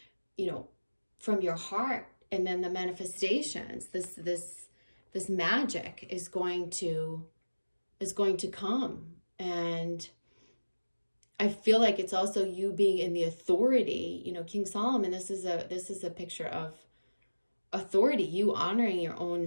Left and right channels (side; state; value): both; inverted; correlation -1.00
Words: from your heart, and then the manifestations, this magic is going to come. And I feel like it's also you being in the authority. King Solomon, this is a picture of authority, you honoring your